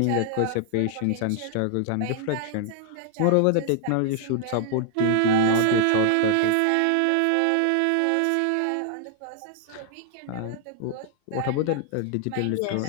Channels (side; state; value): both; different; correlation 0.00